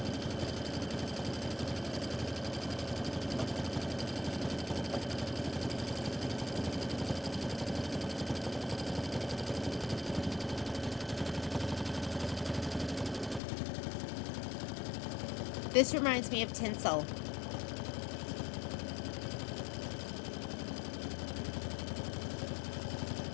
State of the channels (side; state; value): right; drops out; at 13.4 s